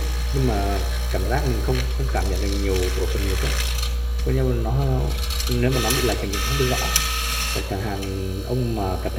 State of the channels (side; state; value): both; identical; correlation 1.00